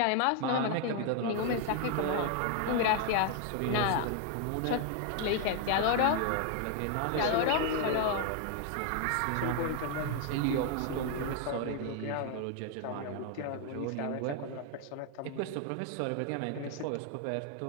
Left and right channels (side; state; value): both; different; correlation 0.00